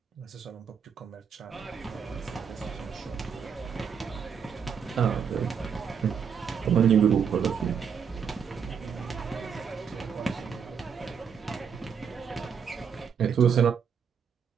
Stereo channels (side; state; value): left; quieter; 7.0 dB